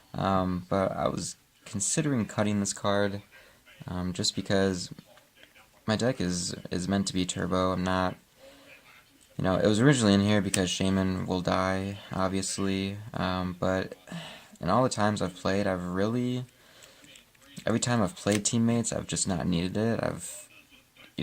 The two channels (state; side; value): identical; both; correlation 1.00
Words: But I was considering cutting this card just because my deck is meant to be turbo. I'm not... You know, it was originally in here because Shaman will die, obviously, but in all the times I've played, every time I've played Teammates, I've just not needed it.